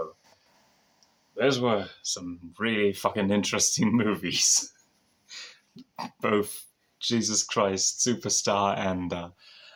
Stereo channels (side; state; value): both; identical; correlation 1.00